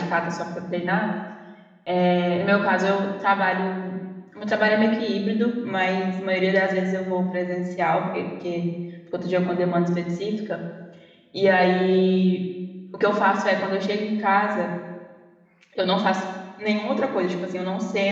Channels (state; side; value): identical; both; correlation 1.00